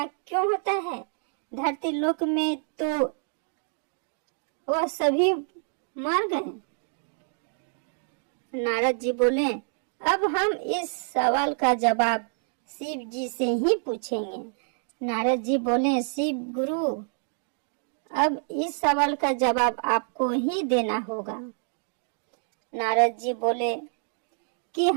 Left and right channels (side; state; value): left; silent; 60 dB below the other